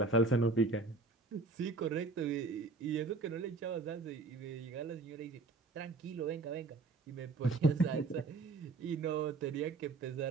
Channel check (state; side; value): quieter; left; 3.8 dB